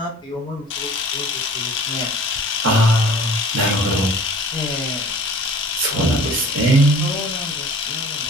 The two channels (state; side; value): normal; both; correlation 0.47